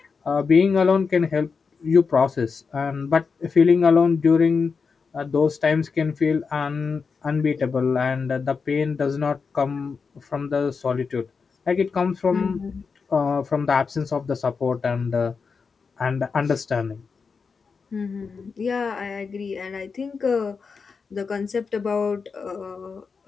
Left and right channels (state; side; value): quieter; right; 5.2 dB